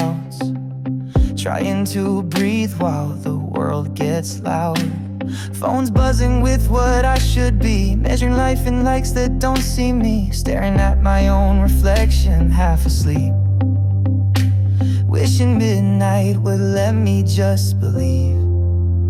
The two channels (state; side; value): identical; both; correlation 1.00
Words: Trying to breathe while the world gets loud. Phone's buzzing with what I should be, measuring life in likes that don't see me. Staring at my own reflection, half asleep. Wishing midnight would let me just believe.